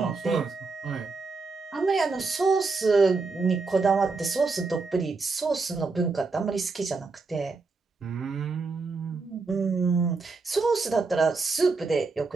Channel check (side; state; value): left; quieter; 4.1 dB